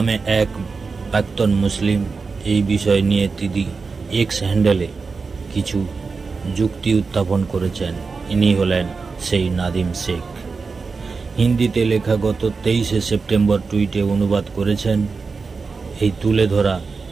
এক প্রাক্তন মুসলিম এই বিষয় নিয়ে তিনি এক্স হ্যান্ডেলে কিছু যুক্তি উত্থাপন করেছেন। ইনি হলেন সেই নাদিম শেখ। হিন্দিতে লেখা গত 23 সেপ্টেম্বর টুইটে অনুবাদ করেছেন। এই তুলে ধরা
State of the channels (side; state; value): left; quieter; 4.6 dB